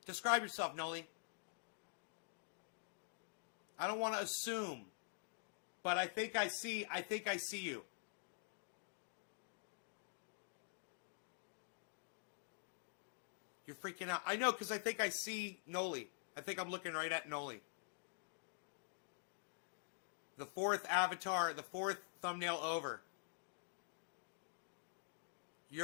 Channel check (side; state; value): right; silent; digital silence